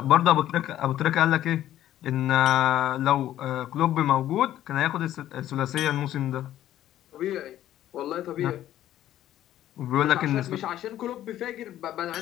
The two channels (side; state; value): right; quieter; 12.6 dB